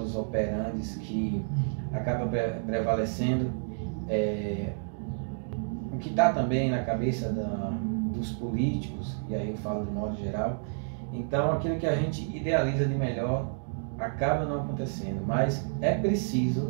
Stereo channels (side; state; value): left; silent; digital silence